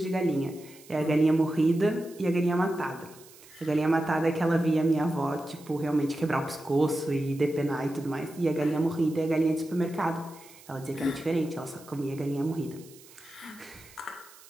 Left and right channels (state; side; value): noise; right; hiss, 22 dB below the sound